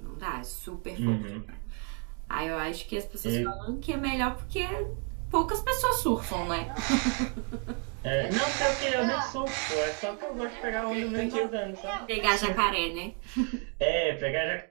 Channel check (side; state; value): left; quieter; 39.3 dB